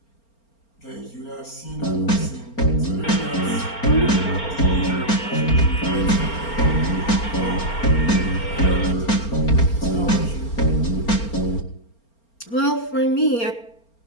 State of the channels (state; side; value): late; right; 4.4 ms